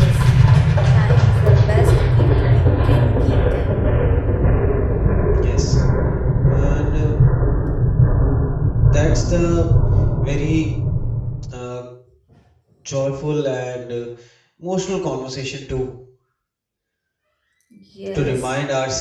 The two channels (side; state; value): both; identical; correlation 1.00